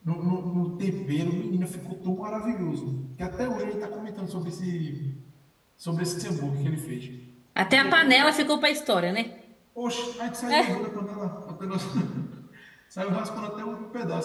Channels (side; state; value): both; identical; correlation 1.00